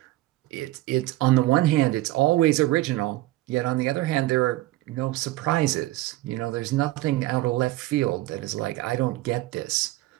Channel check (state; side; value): quieter; left; 17.3 dB